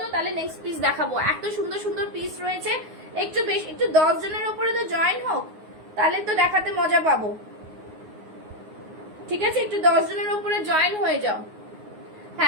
তাহলে নেক্সট পিস দেখাবো। এত সুন্দর সুন্দর পিস রয়েছে, একটু বেশি, একটু 10 জনের উপরে তো জয়েন হোক, তাহলে তো দেখাতে মজা পাবো। ঠিক আছে, একটু 10 জনের উপরে জয়েন হয়ে যাও।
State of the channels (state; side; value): late; left; 9.5 ms